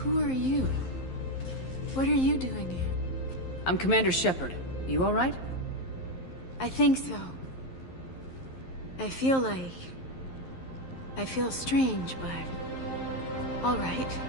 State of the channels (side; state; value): right; late; 11 ms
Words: are you? What are you doing here? I'm Commander Shepard. You all right? I think so. I feel strange, but all right.